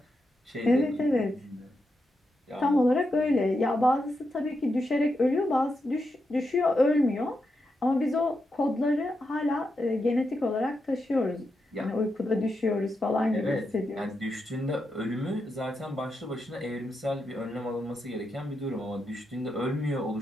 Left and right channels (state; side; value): normal; both; correlation 0.85